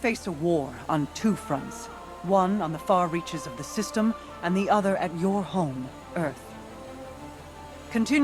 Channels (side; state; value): both; identical; correlation 1.00